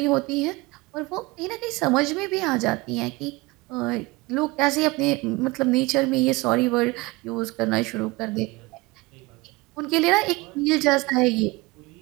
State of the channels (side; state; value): left; quieter; 23.1 dB